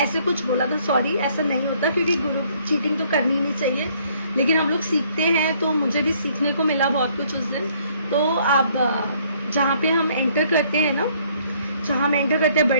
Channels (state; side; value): inverted; both; correlation -0.64